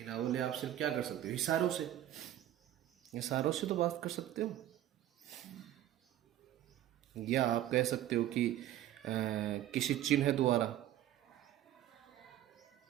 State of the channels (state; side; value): quieter; left; 12.7 dB